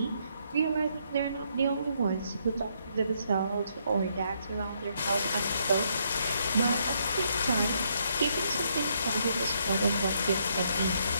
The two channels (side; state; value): both; inverted; correlation -0.73